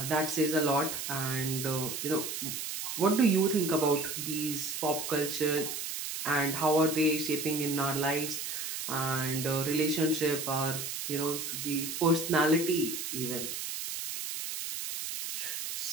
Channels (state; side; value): noise; right; hiss, 5 dB below the sound